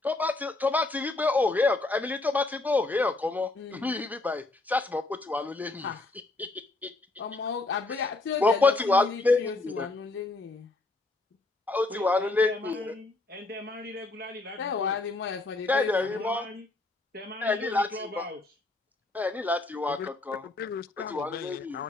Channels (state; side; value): quieter; right; 3.1 dB